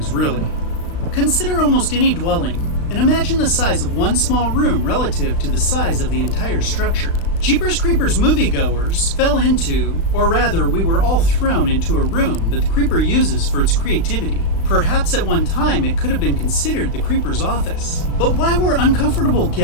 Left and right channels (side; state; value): right; late; 36 ms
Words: really. Consider almost any dwelling, and imagine the size of one small room relative to the size of the entire structure. Jeepers Creepers moviegoers fell into, or rather we were all thrown into a room that the creeper uses for its creativity. Perhaps at one time it could have been considered the creeper's office. But why were uncomfortable